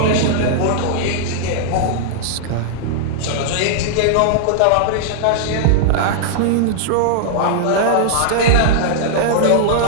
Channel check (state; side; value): different; both; correlation -0.01